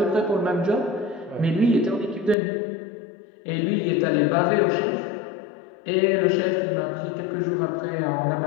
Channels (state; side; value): drops out; right; at 2.4 s